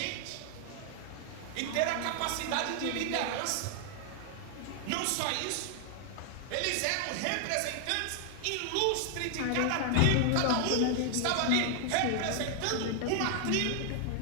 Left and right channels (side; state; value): both; different; correlation 0.00